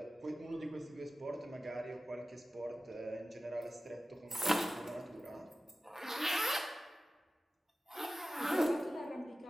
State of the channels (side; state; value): both; normal; correlation 0.95